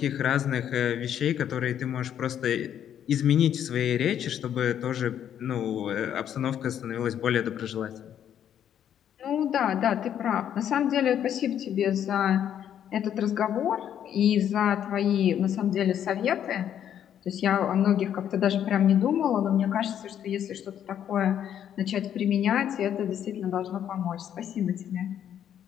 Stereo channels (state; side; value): quieter; right; 9.8 dB